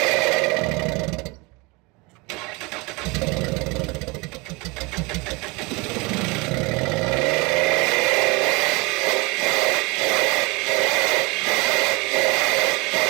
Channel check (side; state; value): left; quieter; 26.3 dB